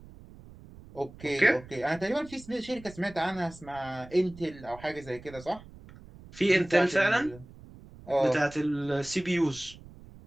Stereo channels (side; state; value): right; noise; rumble, 19 dB below the sound